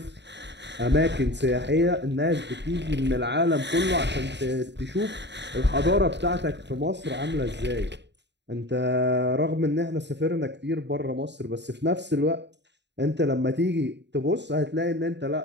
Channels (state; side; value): late; left; 0.51 ms